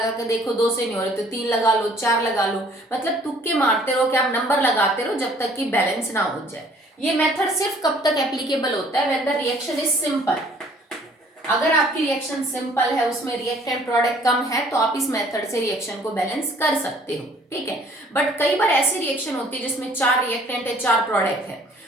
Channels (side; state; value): both; normal; correlation 0.57